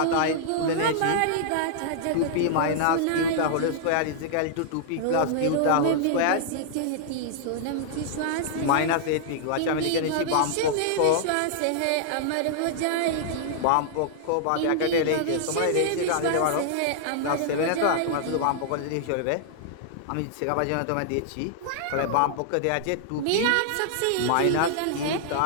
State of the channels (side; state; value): both; different; correlation -0.01